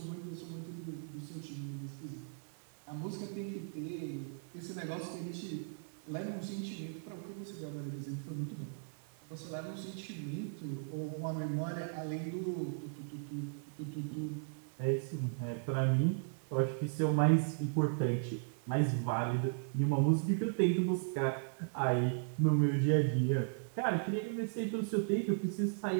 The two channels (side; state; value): left; silent; digital silence